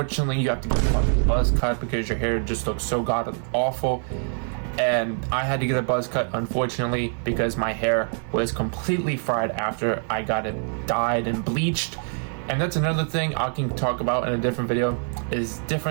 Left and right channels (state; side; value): silent; left; 55 dB below the other